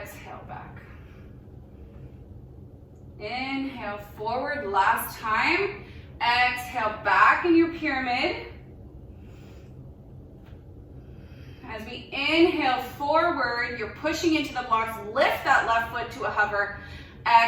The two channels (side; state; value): both; identical; correlation 1.00